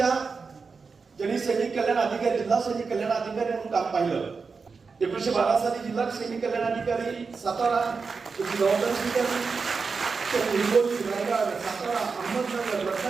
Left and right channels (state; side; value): quieter; left; 4.9 dB